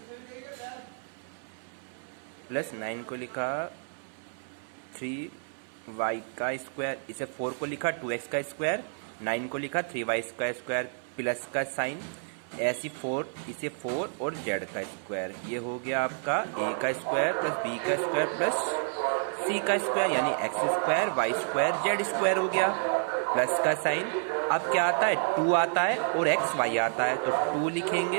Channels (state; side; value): silent; left; 58 dB below the other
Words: प्लस 9 को लिखा 3y का स्क्वायर, इसे 4 को लिखा 2x का स्क्वायर, 9 को लिखा 3y का स्क्वायर, प्लस का साइन ऐसी 4 इसे 4 और z का स्क्वायर। ये हो गया आपका a का स्क्वायर प्लस b का स्क्वायर प्लस c का स्क्वायर, यानी x square y square z square हो गया। प्लस का साइन अब क्या आता है 2 आता है और x y आता है, तो 2